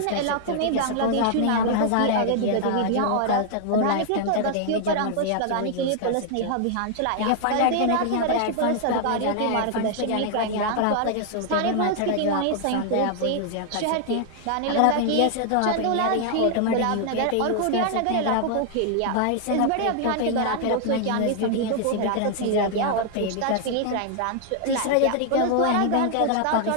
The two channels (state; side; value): different; both; correlation 0.00